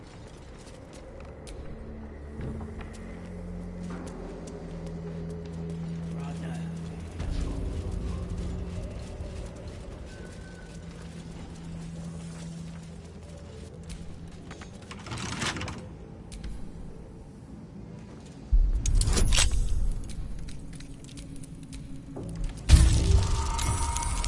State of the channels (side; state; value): both; identical; correlation 1.00